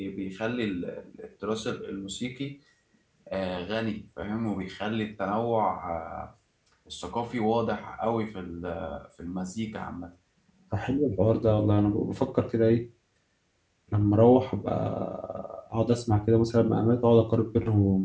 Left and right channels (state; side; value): identical; both; correlation 1.00